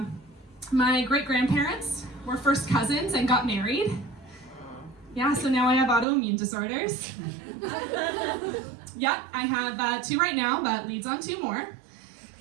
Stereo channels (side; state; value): left; drops out; at 6.1 s